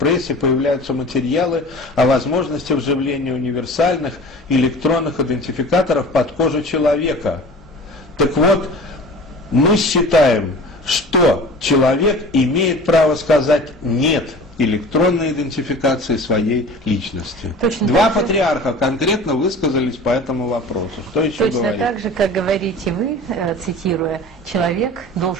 появляются материалы о возможности вживления универсальных электронных идентификаторов под кожу человека. Так вот, мы считаем, что человек имеет право сказать «нет» электронной идентификации своей личности. Два патриарха конкретно высказались по этому вопросу. Что еще точно говорить? Так же, как говорите вы, цитируя, человек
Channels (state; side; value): normal; both; correlation 0.40